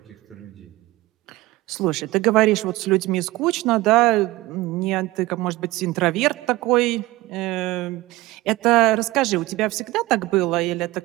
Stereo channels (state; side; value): quieter; left; 19.2 dB